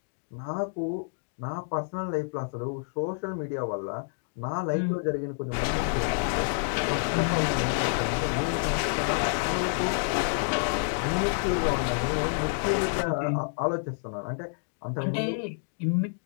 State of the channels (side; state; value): right; silent; digital silence